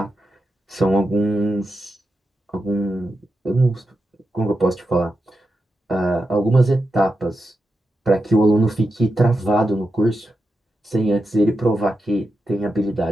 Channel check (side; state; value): both; normal; correlation 0.88